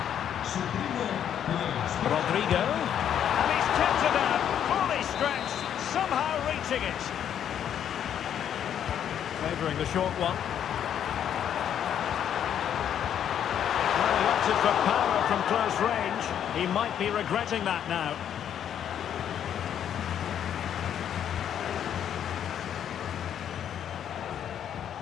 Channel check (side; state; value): right; quieter; 9.5 dB